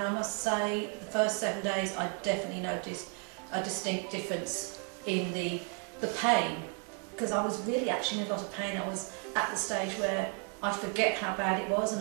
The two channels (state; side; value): quieter; left; 36.3 dB